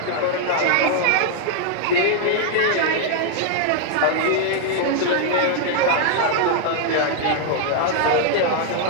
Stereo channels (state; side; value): different; both; correlation 0.00